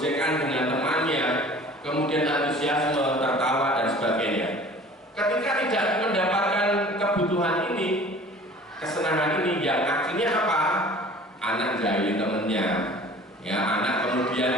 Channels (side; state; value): both; normal; correlation 0.46